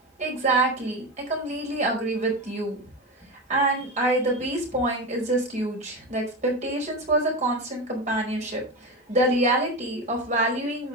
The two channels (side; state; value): both; normal; correlation 0.20